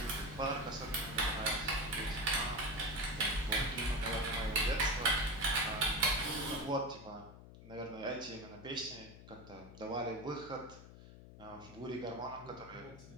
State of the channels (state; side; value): noise; left; hum, 16 dB below the sound